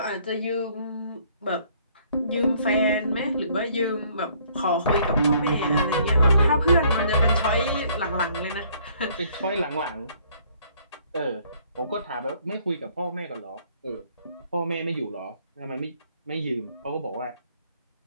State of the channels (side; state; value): both; inverted; correlation -0.62